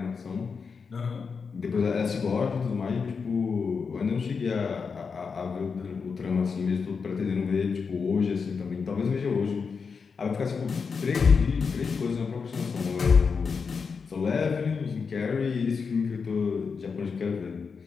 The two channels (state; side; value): quieter; right; 5.5 dB